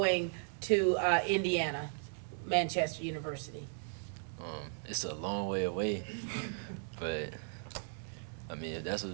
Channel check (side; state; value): left; silent; digital silence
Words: to Indiana, Manchester University? It's a long way away, but I mean, if that's